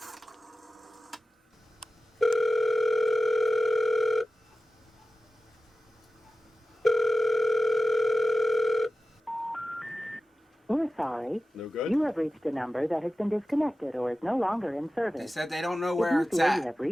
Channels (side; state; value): both; normal; correlation 0.94